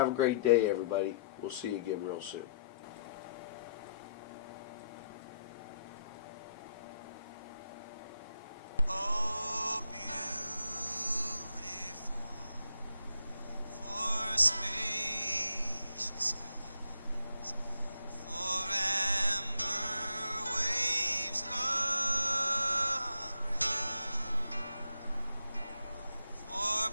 a great day, everybody. We'll see you again real soon.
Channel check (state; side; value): inverted; both; correlation -0.73